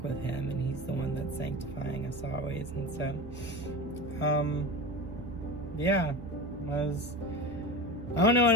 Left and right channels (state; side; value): normal; both; correlation 0.28